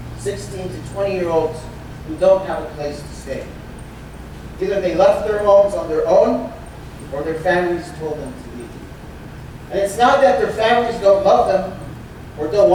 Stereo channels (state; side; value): identical; both; correlation 1.00